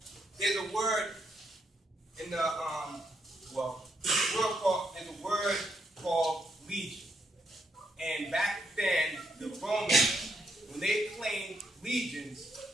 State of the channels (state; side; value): normal; both; correlation 0.77